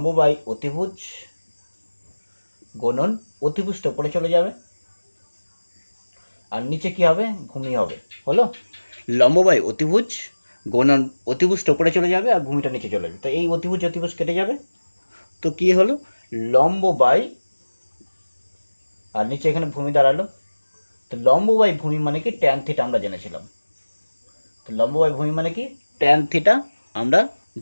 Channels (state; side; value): inverted; both; correlation -1.00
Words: বাই অতিভুজ গুণন অতিভুজটা উপরে চলে যাবে, আর নিচে কি হবে? ভূমি হবে। হলো লম্ব বাই অতিভুজ গুণন অতিভুজটা উপরে চলে যাবে আর ভূমিটা নিচে চলে যাবে। তো এই অতিভুজ অতিভুজ কেটে যাবে, তো কি হলো? লম্ব বাই, আর নিচে এখানে ভূমি দাঁড়ালো। তো লম্ব বাই ভূমি মানে কি? ট্যান থিটা আমরা জেনেছিলাম। তো লম্ব বাই ভূমি মানে কি? ট্যান থিটা আমরা